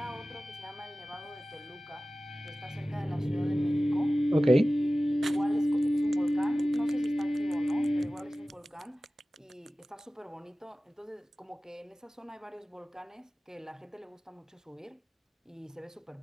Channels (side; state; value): both; normal; correlation 0.96